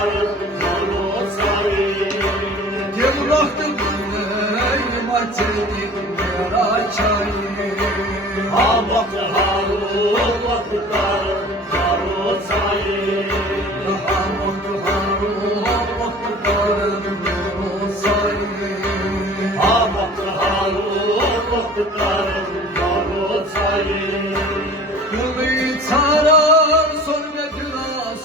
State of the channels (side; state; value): both; normal; correlation 0.44